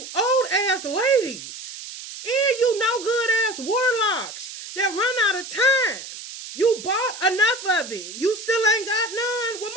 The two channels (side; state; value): right; noise; hiss, 11 dB below the sound